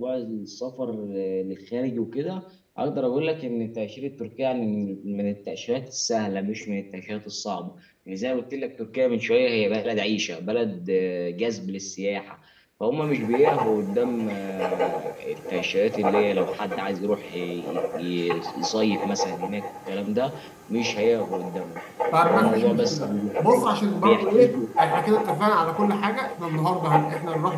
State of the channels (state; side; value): identical; both; correlation 1.00